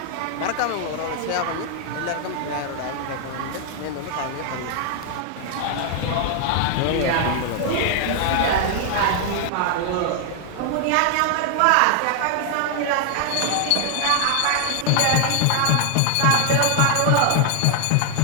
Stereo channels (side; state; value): both; different; correlation 0.00